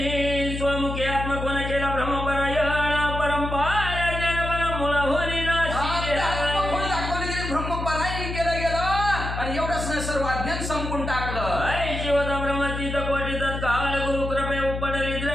स्वमुखी आत्मकोन केला ब्रह्मपरायण परंपरा जन मुळा होली दाखवले गेले, ब्रह्मपरायण केलं गेलं आणि एवढंच नाही सर्व अज्ञान संपून टाकलं. शिवता ब्रह्मतीत कोटी तत्काळ गुरु कृपे उपडली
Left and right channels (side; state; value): left; noise; hum, 5 dB below the sound